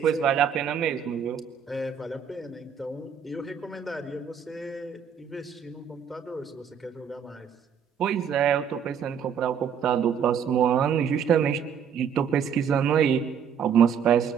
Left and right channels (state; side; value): quieter; left; 7.6 dB